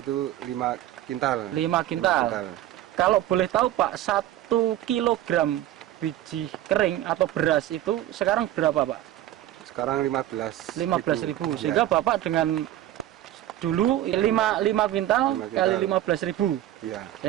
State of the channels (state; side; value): quieter; left; 13.4 dB